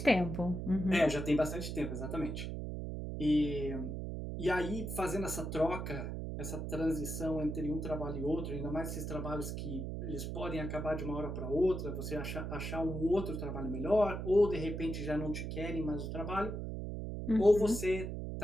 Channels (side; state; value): right; noise; hum, 4 dB below the sound